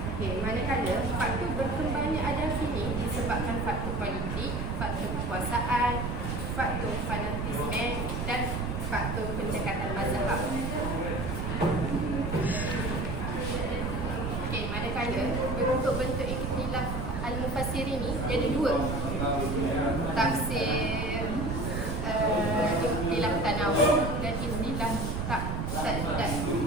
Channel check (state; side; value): noise; right; rumble, 2 dB below the sound